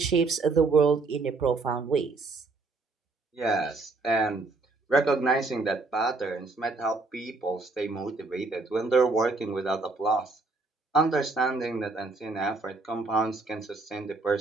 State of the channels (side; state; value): left; quieter; 3.6 dB